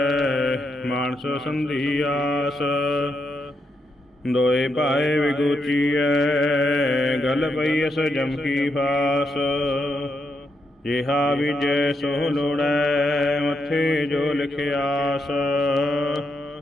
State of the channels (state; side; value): normal; both; correlation 0.81